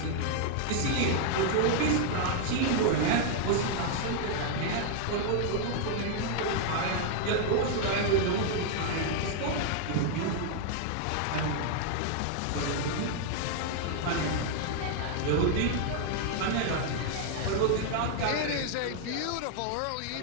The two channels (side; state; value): both; different; correlation 0.00